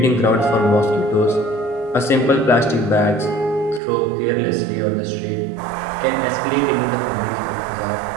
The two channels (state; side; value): drops out; left; at 3.8 s